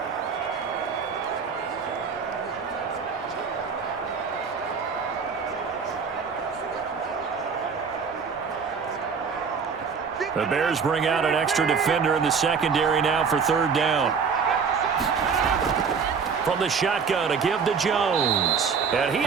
The Bears bring out an extra defender in the secondary now for third down. From the shotgun, a give to Jones. And he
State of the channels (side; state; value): left; quieter; 5.8 dB